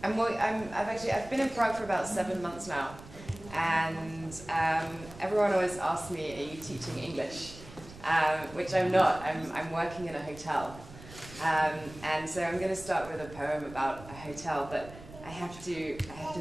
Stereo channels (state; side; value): noise; right; rumble, 17 dB below the sound